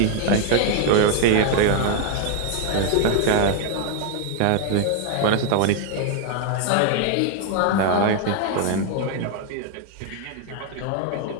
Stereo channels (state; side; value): different; both; correlation 0.00